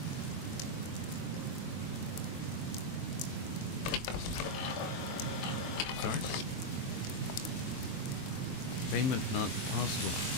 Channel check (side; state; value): right; late; 23 ms